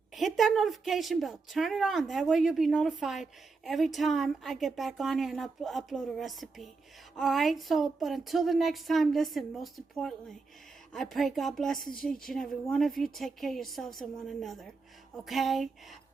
hit that notification bell. Turn it on. That way you'll be notified every time I get back on here and upload a recipe. Alright, but until the next time, listen, most importantly, I pray God blesses each and every one of you. Take care of yourselves and one another. Okay?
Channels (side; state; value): left; quieter; 4.2 dB